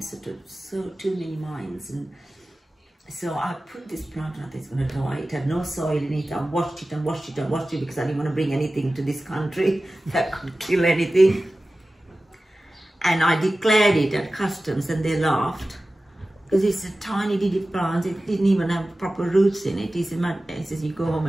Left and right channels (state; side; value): normal; both; correlation 0.96